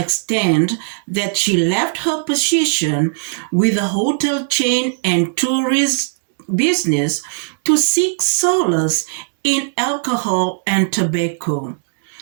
that she left her position with the hotel chain and tourist business to seek solace in alcohol and tobacco.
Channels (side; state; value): left; silent; 67 dB below the other